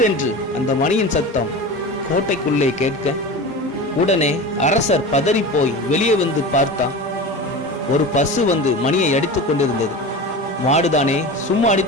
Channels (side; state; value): both; normal; correlation 0.30